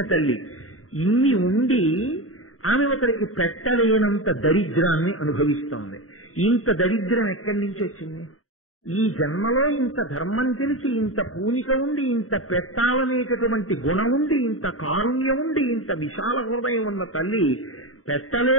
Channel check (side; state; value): right; late; 0.64 ms